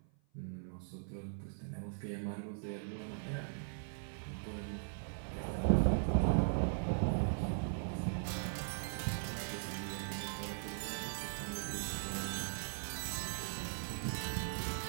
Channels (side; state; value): left; silent; 51 dB below the other